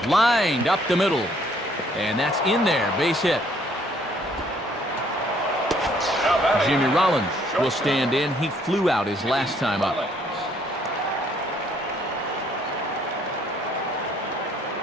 Lined up the middle. And that's in there, base hit. Jimmy Rollins will stand in. He flew out his last time up.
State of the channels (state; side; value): normal; both; correlation 0.64